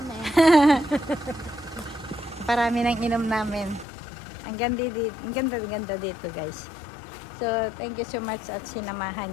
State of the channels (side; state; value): right; drops out; at 3.9 s